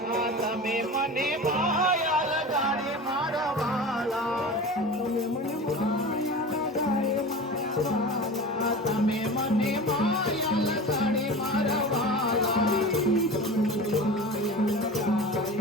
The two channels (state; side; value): normal; both; correlation 0.32